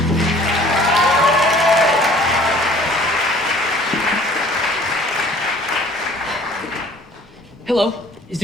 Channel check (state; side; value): normal; both; correlation 0.53